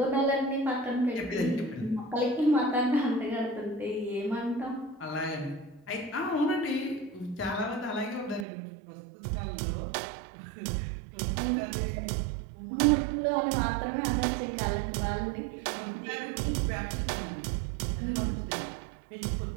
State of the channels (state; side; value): drops out; left; at 8.5 s